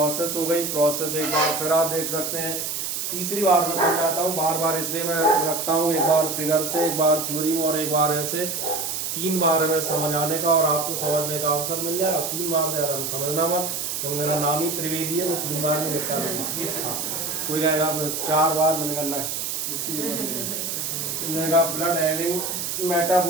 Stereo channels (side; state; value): right; noise; hiss, 3 dB below the sound